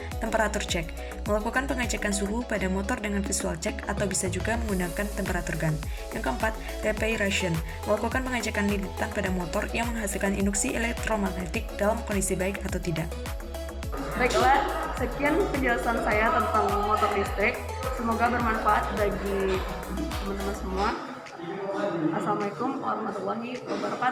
temperatur check. Melakukan pengecekan suhu pada motor dengan visual check atau bisa juga menggunakan temperatur gun. Yang keempat, reparation. Melakukan pengecekan lilitan pada motor yang menghasilkan induksi elektromagnetik dalam kondisi baik atau tidak. Baiklah, sekian penjelasan saya tentang motor listrik. Semoga bermanfaat bagi teman-teman semua. Assalamualaikum warahmatullahi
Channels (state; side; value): identical; both; correlation 1.00